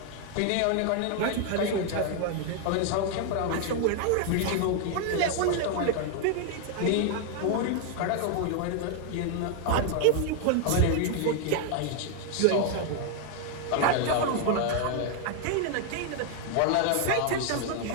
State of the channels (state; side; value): different; both; correlation 0.00